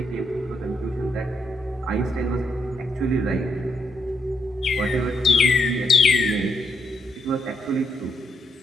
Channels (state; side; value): normal; both; correlation 0.77